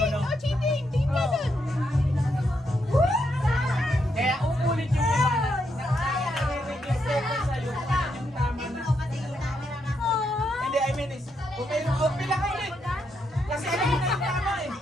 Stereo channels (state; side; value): normal; both; correlation 0.79